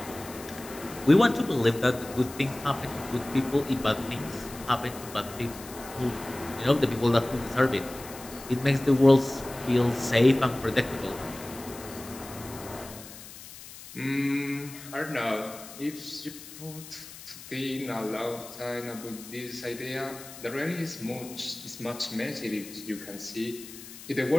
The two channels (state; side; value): noise; left; hiss, 15 dB below the sound